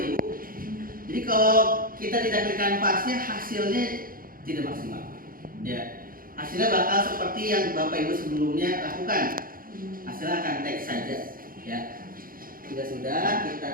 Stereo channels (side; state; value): left; late; 0.41 ms